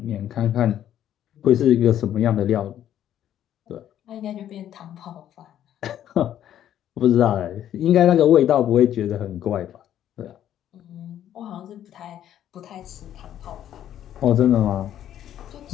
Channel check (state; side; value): quieter; right; 11.0 dB